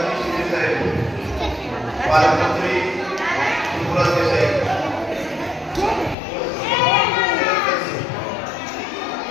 शिंदे साहेब, पालकमंत्री सुब्रत देसाई,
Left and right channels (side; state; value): right; drops out; at 6.2 s